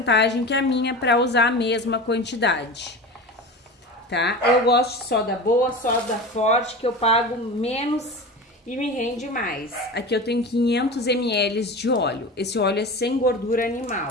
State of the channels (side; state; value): both; normal; correlation 0.30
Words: que a minha para usar a mesma quantidade. Tá? Eu gosto de soda boa, soda forte, que eu pago menos e me rende mais. Aqui eu tenho 500 ml de óleo. Esse óleo é sem gordura